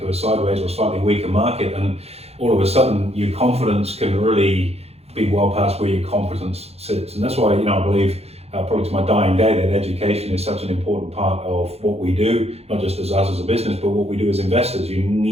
a sideways or slightly weaker market. And all of a sudden, your confidence can really be well past where your competence sits. And that's why, I believe probably to my dying day, that education is such an important part of what we do, not just as us as a business, but what we do as investors. You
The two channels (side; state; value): left; late; 0.30 ms